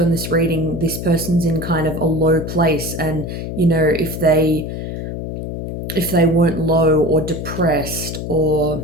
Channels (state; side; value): noise; left; hum, 6 dB below the sound